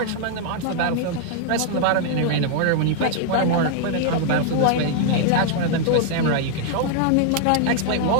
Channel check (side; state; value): both; different; correlation 0.00